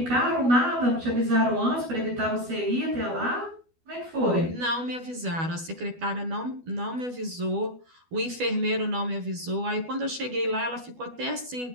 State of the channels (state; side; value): late; left; 12 ms